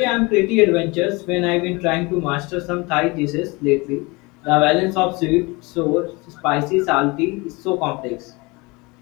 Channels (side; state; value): right; quieter; 25.6 dB